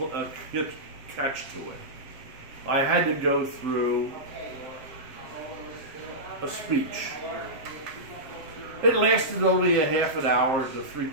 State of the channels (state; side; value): late; left; 7.6 ms